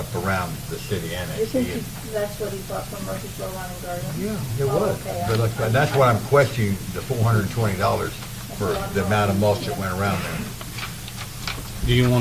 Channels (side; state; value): both; identical; correlation 1.00